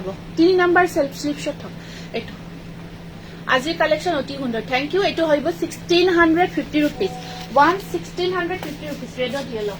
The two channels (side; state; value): both; identical; correlation 1.00